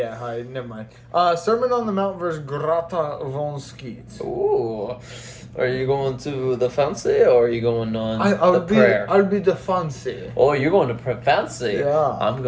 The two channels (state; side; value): identical; both; correlation 1.00